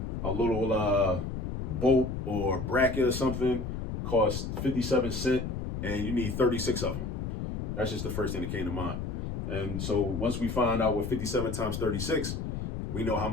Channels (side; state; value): left; noise; rumble, 4 dB below the sound